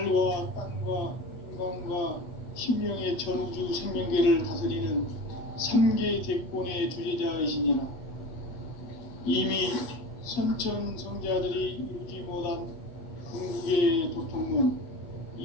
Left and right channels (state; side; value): late; right; 8.1 ms